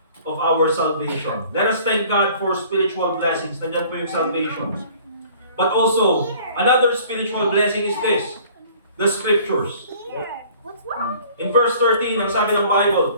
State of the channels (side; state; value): both; inverted; correlation -0.52